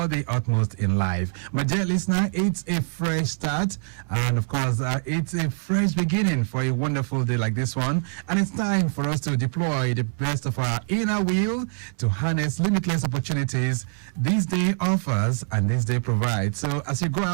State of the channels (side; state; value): left; silent; 62 dB below the other